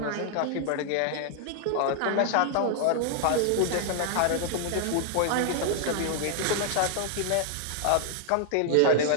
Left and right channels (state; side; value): different; both; correlation 0.00